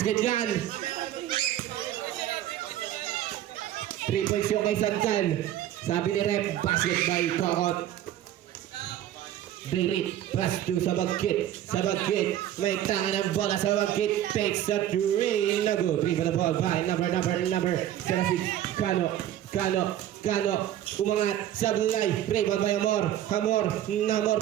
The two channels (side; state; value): left; quieter; 12.1 dB